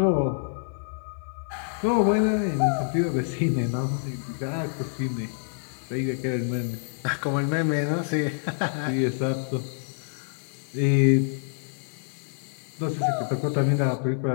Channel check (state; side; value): silent; right; 60 dB below the other